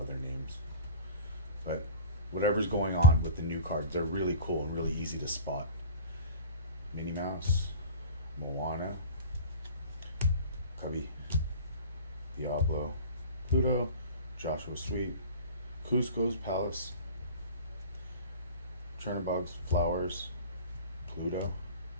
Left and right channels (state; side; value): inverted; both; correlation -0.36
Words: names. But whatever's going on with the new cards, they're really cool and really easy to spot. Minnie Mouse, Moana, Cubby, Diablo, Pluto, Joshua Sweet, Cusco's Palace, Chernobog's Flowers, Pluto,